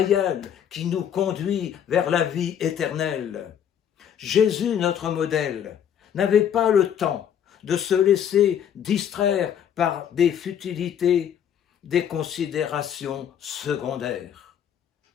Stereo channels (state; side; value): quieter; right; 9.0 dB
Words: qui nous conduit vers la vie éternelle. Jésus, notre modèle, n'avait pas le temps de se laisser distraire par des futilités, des considérations secondaires.